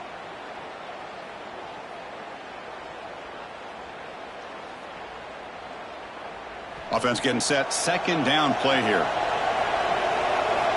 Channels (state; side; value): identical; both; correlation 1.00